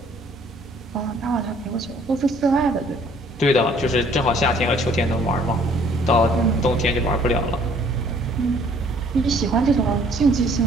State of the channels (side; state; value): both; normal; correlation 0.59